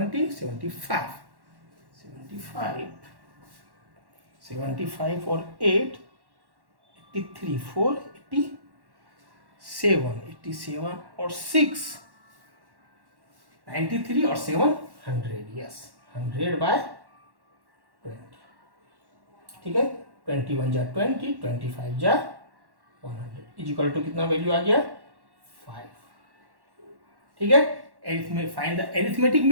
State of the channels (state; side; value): late; left; 1.1 ms